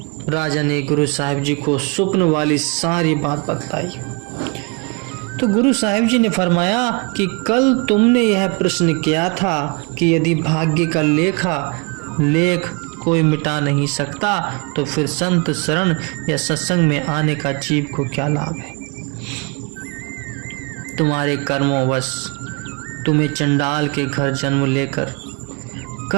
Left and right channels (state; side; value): quieter; left; 30.7 dB